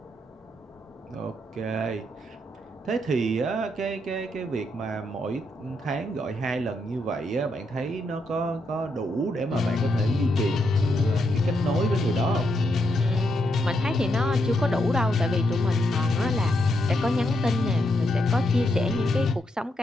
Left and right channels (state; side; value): normal; both; correlation 0.80